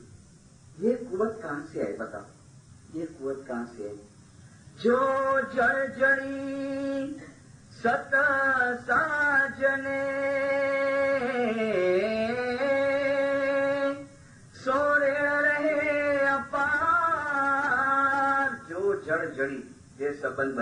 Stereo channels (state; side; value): identical; both; correlation 1.00